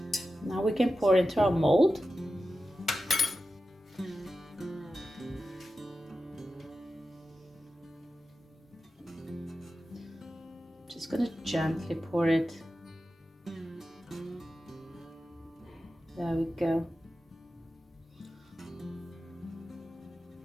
now we can pour into our mold. Just gonna gently pour it. There we go.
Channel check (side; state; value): both; normal; correlation 0.92